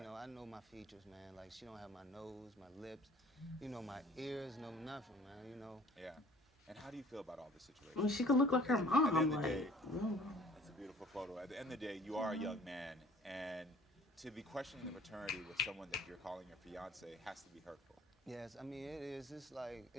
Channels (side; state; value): both; normal; correlation 0.52